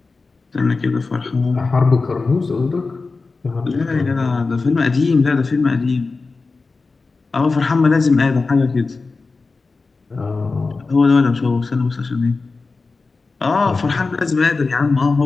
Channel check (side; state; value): right; quieter; 4.0 dB